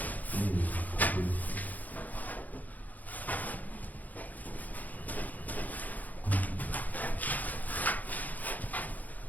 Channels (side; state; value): right; late; 0.080 ms